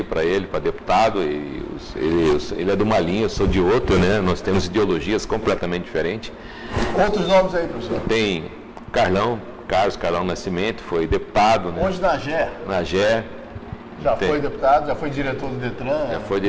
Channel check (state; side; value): identical; both; correlation 1.00